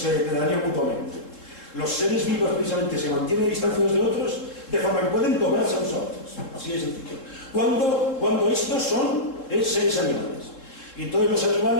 depredarían mutuamente. Los seres vivos precisamente se mantienen a distancia unos de otros, de forma que pueden tomarse unos a otros. Así de sencillo. Cuando estos son seres animales. Y entonces los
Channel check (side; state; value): right; late; 3.7 ms